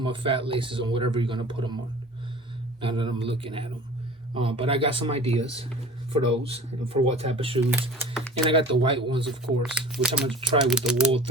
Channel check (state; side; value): normal; both; correlation 0.41